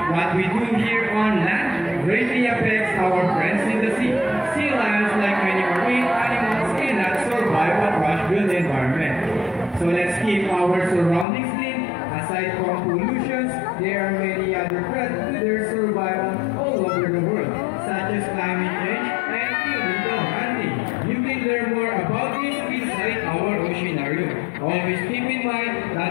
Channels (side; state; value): right; drops out; at 11.2 s